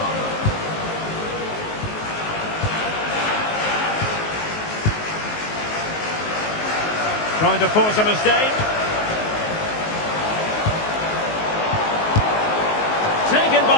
Trying to force a mistake. taken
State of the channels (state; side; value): late; right; 19 ms